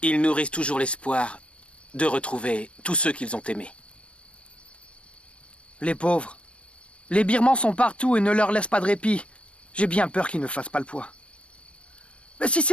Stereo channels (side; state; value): right; late; 0.059 ms